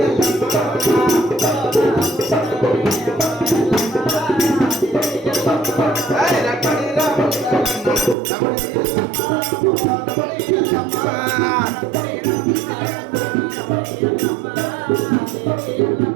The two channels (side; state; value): left; drops out; at 8.2 s